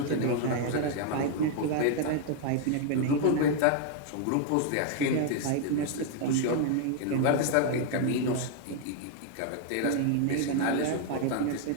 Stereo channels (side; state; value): both; different; correlation 0.00